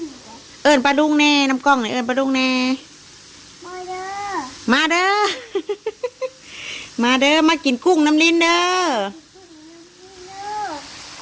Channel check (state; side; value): identical; both; correlation 1.00